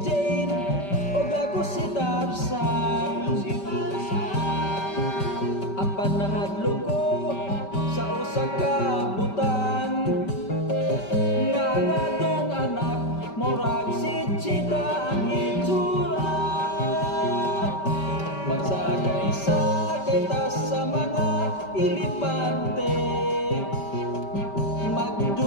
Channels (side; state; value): right; late; 5.2 ms